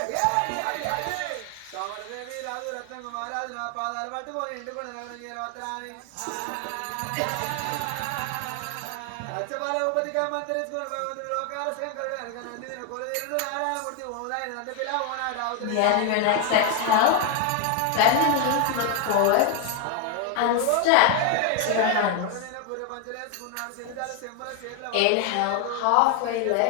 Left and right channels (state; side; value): different; both; correlation 0.00